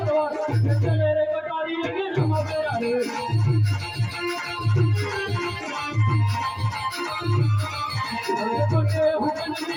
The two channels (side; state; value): both; identical; correlation 1.00